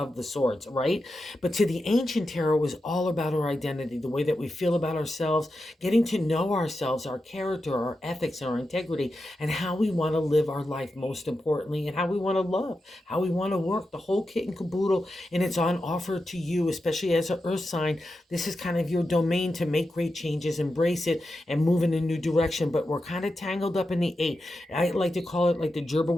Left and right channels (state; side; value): normal; both; correlation 0.89